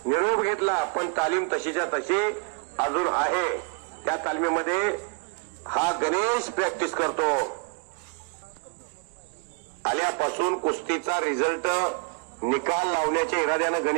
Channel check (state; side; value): quieter; left; 36.7 dB